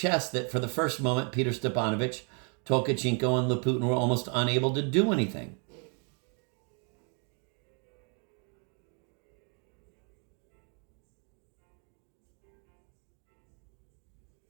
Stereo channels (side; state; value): left; quieter; 38.8 dB